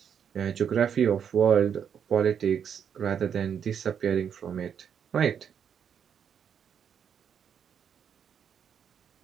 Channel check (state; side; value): quieter; left; 7.9 dB